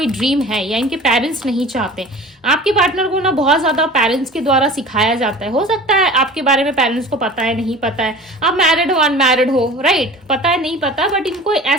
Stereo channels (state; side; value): normal; both; correlation 0.40